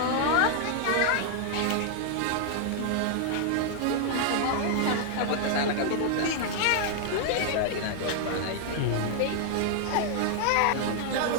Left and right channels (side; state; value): both; different; correlation 0.00